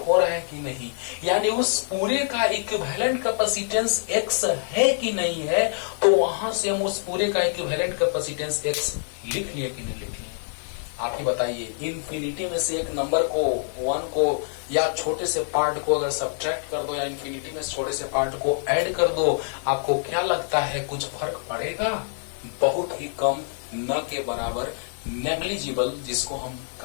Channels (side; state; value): right; silent; digital silence